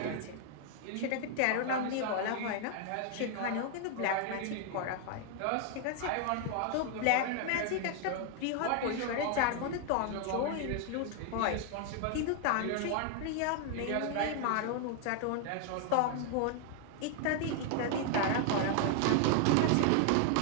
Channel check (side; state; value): both; different; correlation 0.00